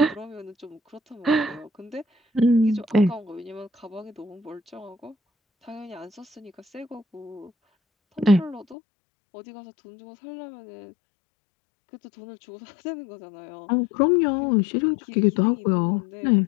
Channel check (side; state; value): right; drops out; at 8.8 s